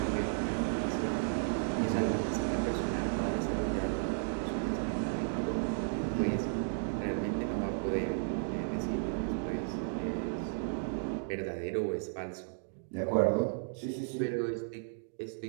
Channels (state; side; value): silent; left; digital silence